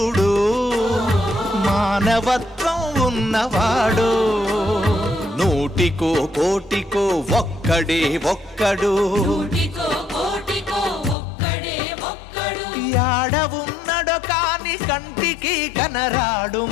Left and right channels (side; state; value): right; drops out; at 11.2 s